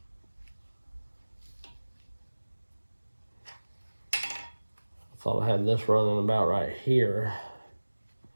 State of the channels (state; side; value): inverted; both; correlation -1.00